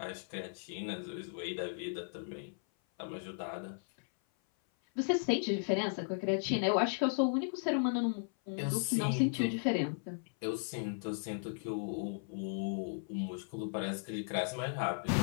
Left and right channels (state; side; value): silent; right; 54 dB below the other